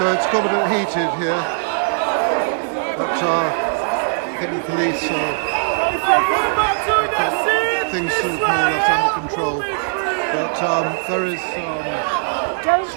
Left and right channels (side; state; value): left; silent; 66 dB below the other